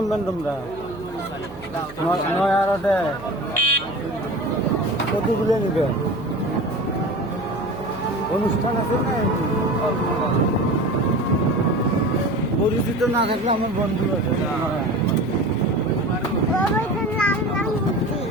তোমরা? নয়ারটে কতগুলো নিবে? অনুষ্ঠান আছে না? পরিচিত না থাকলে আমার বন্ধু আছে।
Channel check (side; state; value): right; noise; hum, 17 dB below the sound